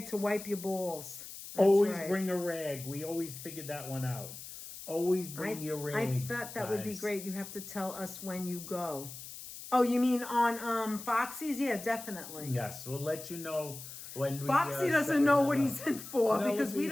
to wipe your balls. Always bring a rag. We always figured that one out. Always bring your rag. I thought that would be great. You have to tell us when you go. Oh, you mean on Foxy's? Yeah, definitely. Yes, we'll let you know when we... Foxy doesn't know what he's in for because we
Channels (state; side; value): noise; left; hiss, 12 dB below the sound